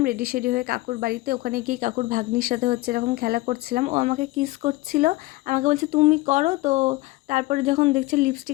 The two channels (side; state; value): right; quieter; 20.1 dB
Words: রেডি সেডি হয়ে কাকুর বাড়িতে। ওখানে গিয়ে কাকুর ভাগ্নির সাথে হচ্ছে এরকম খেলা করছিলাম, ও আমাকে কিস করছিল, আমাকে বলছে তুমি করো। তো তারপরে যখন দেখছে